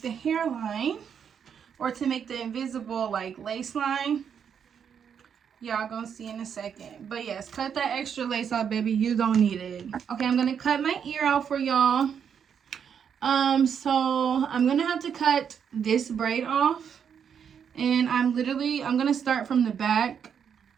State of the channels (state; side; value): quieter; left; 7.6 dB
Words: the hairline or to make the invisible like lace line. Y'all gonna see in a second. But yes, cut that extra lace off, baby. You don't need it. Okay, I'm gonna cut my ear out for y'all. So I'm gonna have to cut this braid off. And I'm gonna start from the back